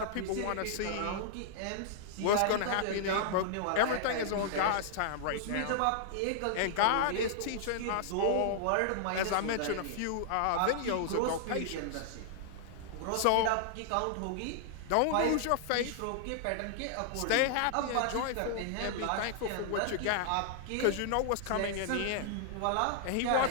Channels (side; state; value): both; different; correlation -0.01